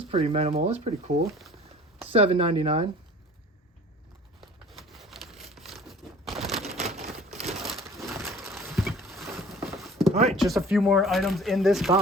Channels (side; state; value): both; normal; correlation 0.47